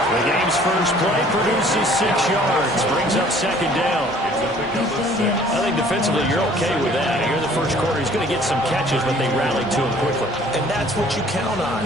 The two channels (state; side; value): normal; both; correlation 0.54